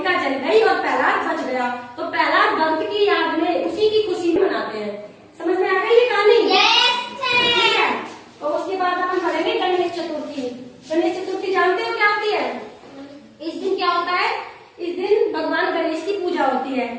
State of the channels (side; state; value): both; identical; correlation 1.00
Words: जल गई और प्रहलाद बच गया। तो प्रहलाद भक्त की याद में, उसी की खुशी में मनाते हैं। समझ में आ गई ये कहानी? ठीक है। तो उसके बाद अपन पढ़ेंगे गणेश चतुर्थी। गणेश चतुर्थी जानते हो क्या होती है? इस दिन क्या होता है? इस दिन भगवान गणेश की पूजा होती है।